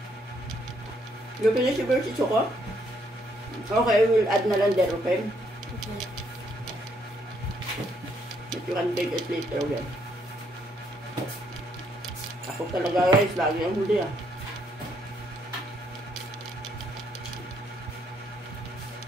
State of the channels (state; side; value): normal; both; correlation 0.71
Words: You finish your versi, Choco? Okay, we'll add na lang there, okay? Okay. But you can take it later again. Ako talaga guys, lagi ang huli ah.